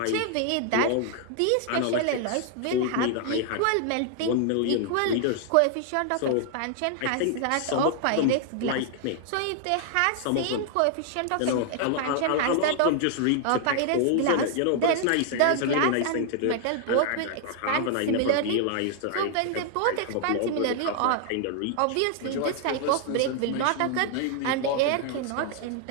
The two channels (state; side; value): different; both; correlation 0.00